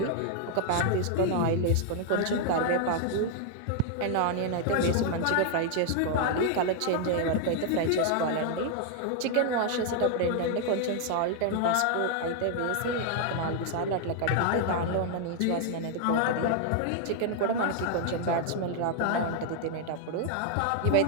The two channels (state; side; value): different; both; correlation 0.00